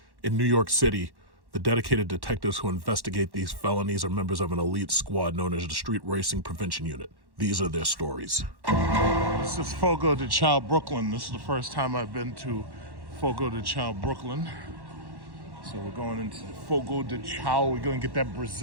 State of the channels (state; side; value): late; left; 1.1 ms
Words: In New York City, the dedicated detectives who investigate these felonies are members of an elite squad known as the Street Racing Prevention Unit. These are their stories. This is Fogo de Chão, Brooklyn. This is the first time I've been to Fogo de Chão, Brooklyn. So we're going into Fogo de Chão. We're going to get that